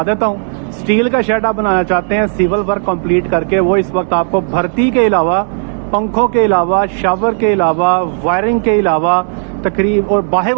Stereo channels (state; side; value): silent; left; digital silence